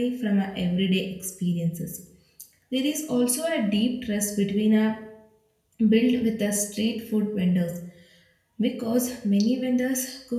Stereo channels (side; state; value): both; identical; correlation 1.00